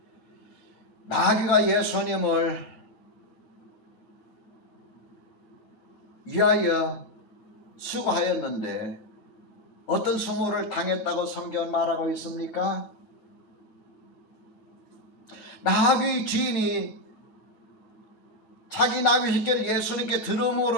마귀가 예수님을 위하여 수고하였는데 어떤 수모를 당했다고 성경은 말하고 있습니까? 나귀 주인이 자기 나귀 새끼를 예수님께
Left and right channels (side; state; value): right; late; 8.9 ms